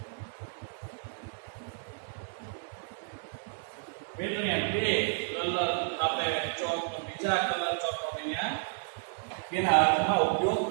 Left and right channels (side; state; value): left; silent; digital silence